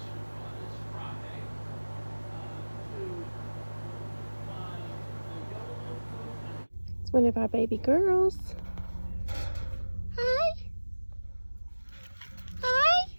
It's one of our baby girls. Hi. Hi.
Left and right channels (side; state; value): both; inverted; correlation -1.00